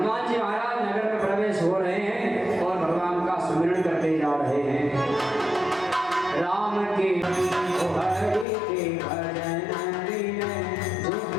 जी महाराज नगर में प्रवेश हो रहे हैं और भगवान का सुमिरन करते जा रहे हैं। राम के हरि के भजन बिन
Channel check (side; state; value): right; drops out; at 8.5 s